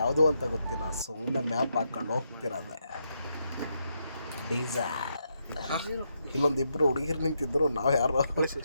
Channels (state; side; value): inverted; both; correlation -0.81